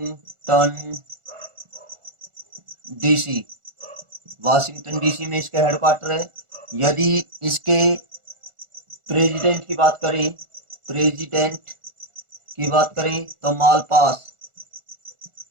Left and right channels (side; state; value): left; late; 1.4 ms